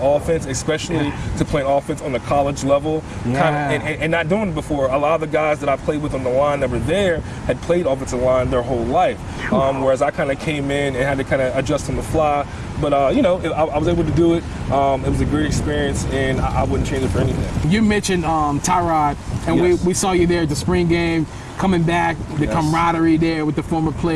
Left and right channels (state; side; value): identical; both; correlation 1.00